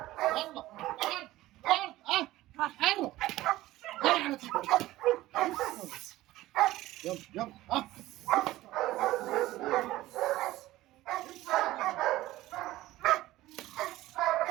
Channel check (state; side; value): quieter; left; 16.6 dB